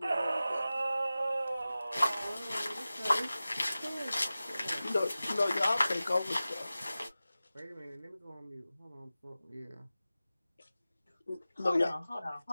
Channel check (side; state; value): both; inverted; correlation -0.96